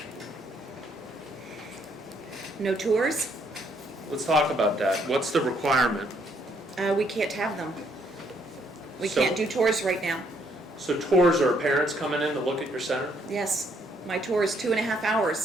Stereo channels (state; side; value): normal; both; correlation 0.70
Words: No tours? Let's talk about that. What's the requirement? We can't have them. We So- can't do tours right now. So tours are parents coming in to look at your center? Yes, my tour is 2.5